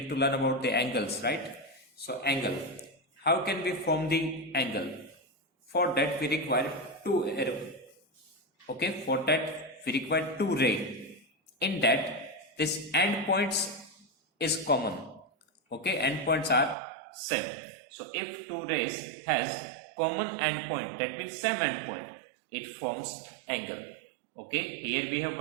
to learn about the angles, right? So angle, how can we form the angle? For that we require two arrow. Okay, for that we require two ray. In that, this endpoints is common. Okay, endpoints are same. So if two rays has common endpoint, that means same endpoint, it forms angle. Okay, here we have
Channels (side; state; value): left; drops out; at 16.8 s